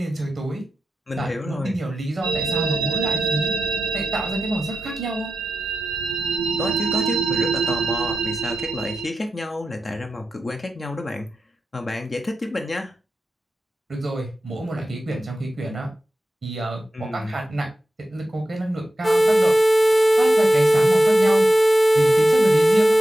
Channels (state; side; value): normal; both; correlation 0.91